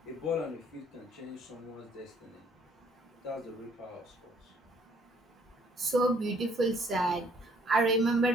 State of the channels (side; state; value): both; normal; correlation 0.63